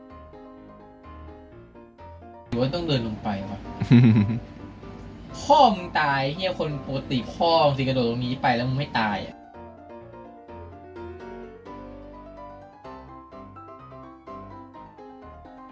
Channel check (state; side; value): identical; both; correlation 1.00